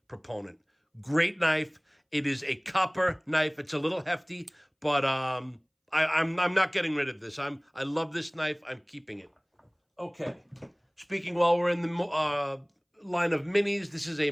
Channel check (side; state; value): both; identical; correlation 1.00